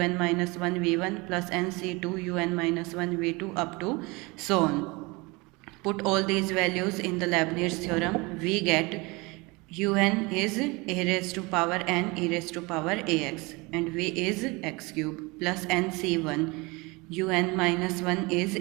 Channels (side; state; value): left; quieter; 25.6 dB